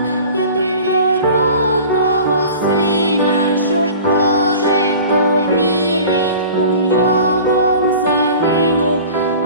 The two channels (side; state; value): both; inverted; correlation -0.42